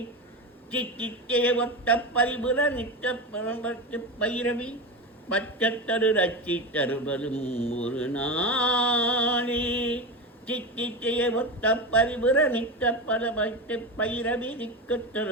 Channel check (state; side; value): normal; both; correlation 0.21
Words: சித்தித்தே ஒத்த பரிபுர நித்த பரம்பத்து பைரவி பச்சத்தரு ரச்சி தருவதும் ஒரு நாளே. சித்தித்தே ஒத்த பரிபுர நித்த பரம்பத்து பைரவி